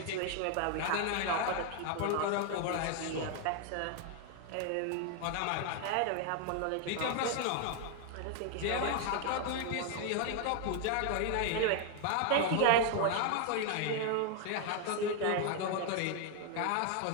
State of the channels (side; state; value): both; different; correlation 0.00